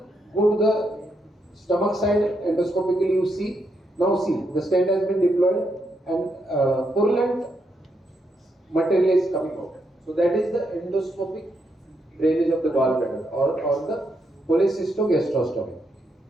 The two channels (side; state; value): both; normal; correlation 0.80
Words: go to the stomach side. Endoscopically you see. Now see, the stent has been deployed, and purulent material is coming out. So that is the endoscopic drainage of the gallbladder, or the cholecystogastrostomy.